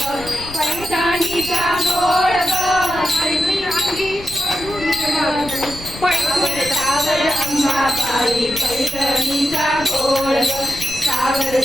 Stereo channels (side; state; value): left; noise; rumble, 15 dB below the sound